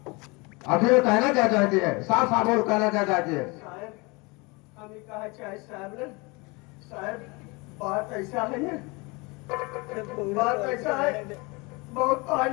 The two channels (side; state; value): right; quieter; 27.0 dB